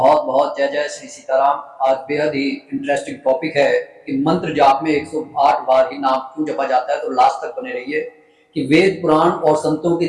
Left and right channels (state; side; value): identical; both; correlation 1.00